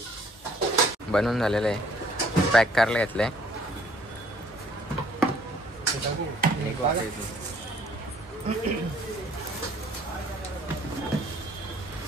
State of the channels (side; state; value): both; normal; correlation 0.60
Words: बनवून झालेलं आहे पॅक करायला घेतलंय